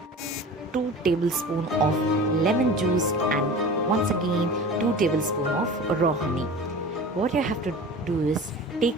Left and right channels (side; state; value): both; normal; correlation 0.37